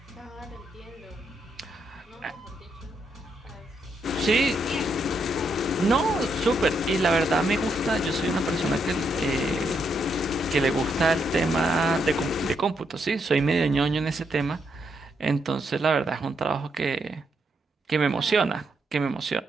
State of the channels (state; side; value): normal; both; correlation 0.78